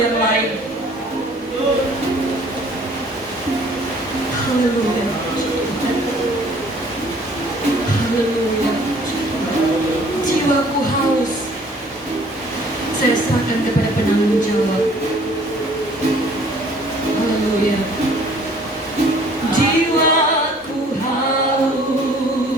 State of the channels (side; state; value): both; normal; correlation 0.55